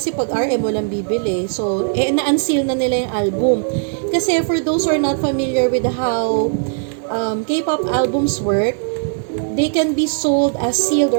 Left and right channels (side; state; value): left; silent; 63 dB below the other